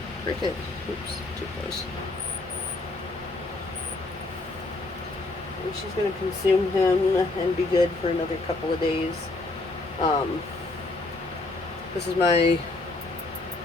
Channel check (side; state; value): right; quieter; 3.1 dB